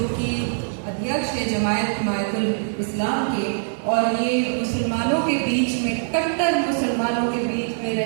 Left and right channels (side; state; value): left; silent; digital silence